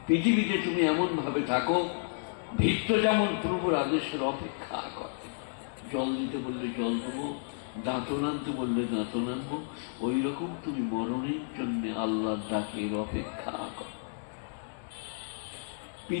পৃথিবীতে তুমি এমন ভাবে থাকো, ভিত্ত যেমন পূর্বর আদেশের অপেক্ষা করে। জল দিতে বললে জল দেবো, দাঁতন আনতে বললে দাঁতন আনবো, ওই রকম তুমি মরণের জন্য আল্লাহর ডাকের অপেক্ষা করো।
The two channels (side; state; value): right; silent; digital silence